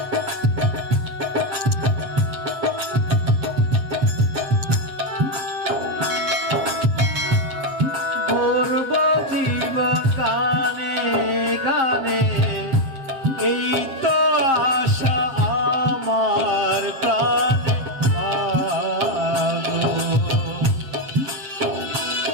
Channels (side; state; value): left; late; 7.5 ms